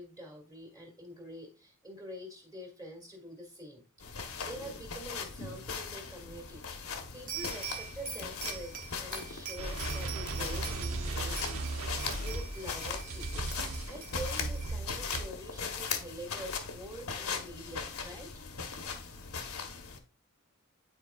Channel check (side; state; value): both; normal; correlation 0.32